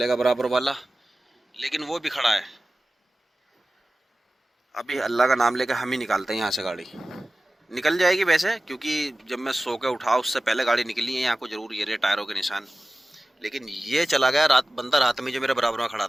बराबर वाला, लेकिन वो भी खड़ा है। अभी अल्लाह का नाम लेकर हम ही निकालते हैं यहाँ से। गाड़ी निकल जाएगी वैसे, क्योंकि जब मैं सो के उठा उससे पहले गाड़ी निकली है। यहाँ को जरूर ये रहे टायरों के निशान, लेकिन ये चला गया रात बंदा रात में जो मेरे बराबर में खड़ा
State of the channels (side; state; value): both; normal; correlation 0.96